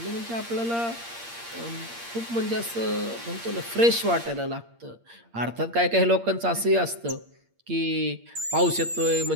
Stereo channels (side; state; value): left; late; 8.6 ms